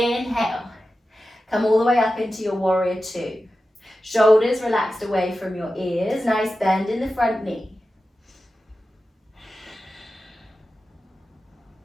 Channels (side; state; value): both; normal; correlation 0.93